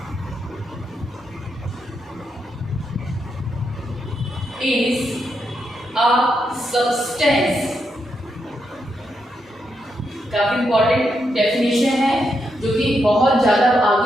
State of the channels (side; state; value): both; normal; correlation 0.82